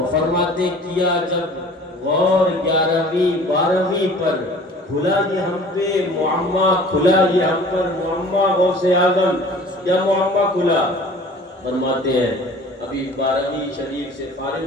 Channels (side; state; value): both; normal; correlation 0.46